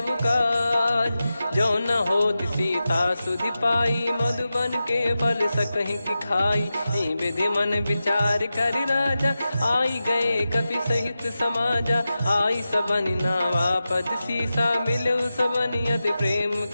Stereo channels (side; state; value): both; inverted; correlation -0.93